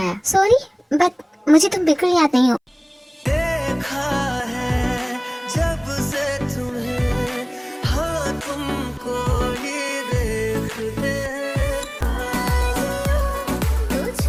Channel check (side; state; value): both; identical; correlation 1.00